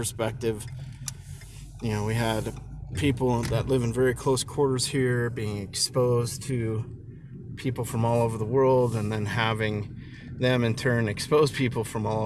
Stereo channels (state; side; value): identical; both; correlation 1.00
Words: you know, we had people that live in very close quarters here being exposed to people from all over the world, and then having them in turn expose people from all